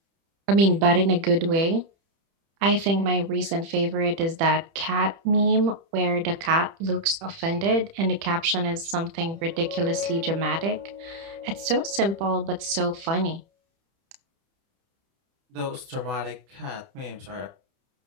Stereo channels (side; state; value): left; late; 30 ms